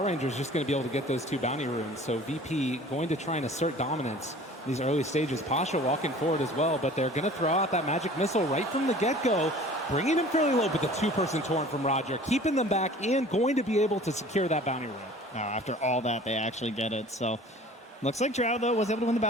Ranger is just going to be able to get those 2 bounty runes. So VP going to try and assert dominance in these early stages. Pasha walking forward as well, but they're going to throw out that magic missile right from the get-go, bringing him fairly low, but the 2-person torrent from Roger, keeping them back and going to be able to secure that bounty rune. After all that, they actually get it. So looks like Drow, though, was able to win the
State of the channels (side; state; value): both; normal; correlation 0.46